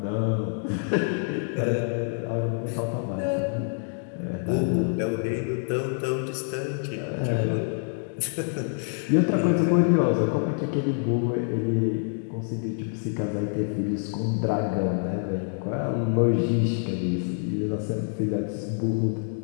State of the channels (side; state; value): right; silent; 61 dB below the other